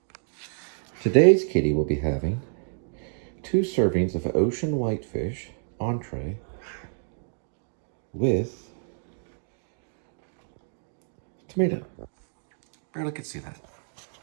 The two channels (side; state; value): left; silent; digital silence